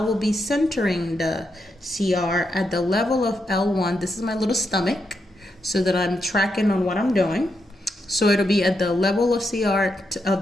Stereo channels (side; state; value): both; normal; correlation 0.83